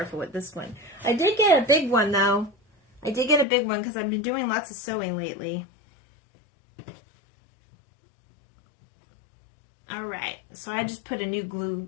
with this one. I did get a big one though. I did get a big one because I've been doing lots of sewing lately. All right, so I just put a new glue.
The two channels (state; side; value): drops out; right; at 3.5 s